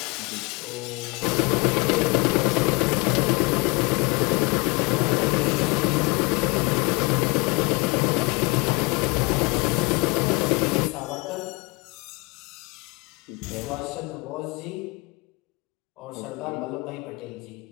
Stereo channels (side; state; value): right; quieter; 26.9 dB